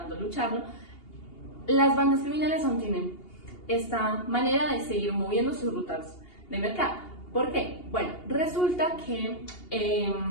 lucharlo, las bandas criminales aún tienen esta manera de seguir moviendo sus rutas de mercado. ¿Por qué? Bueno, resulta que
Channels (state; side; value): late; right; 2.8 ms